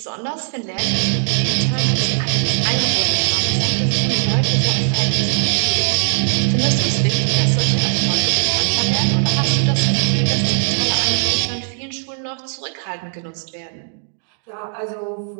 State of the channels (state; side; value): silent; left; digital silence